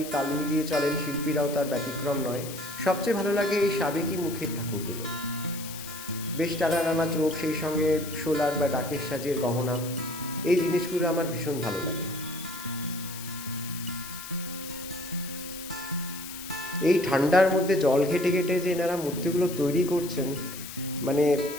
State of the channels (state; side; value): noise; left; hiss, 11 dB below the sound